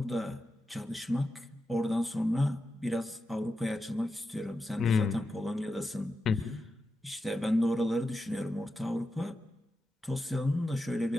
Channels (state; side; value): normal; both; correlation 0.90